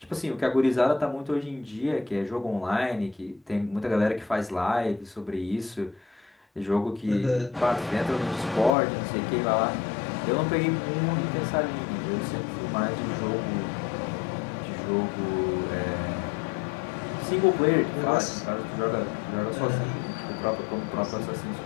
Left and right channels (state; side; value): drops out; right; at 8.7 s